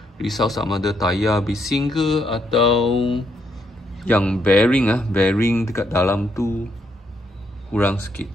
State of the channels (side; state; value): both; normal; correlation 0.75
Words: Risau sama ada tayar bising ke, atau yang bearing dekat dalam tu kurang sikit.